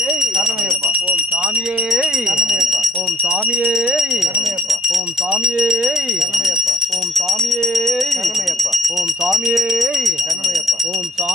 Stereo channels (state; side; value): normal; both; correlation 0.61